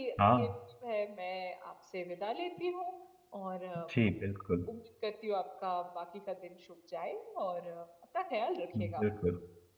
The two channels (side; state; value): both; identical; correlation 1.00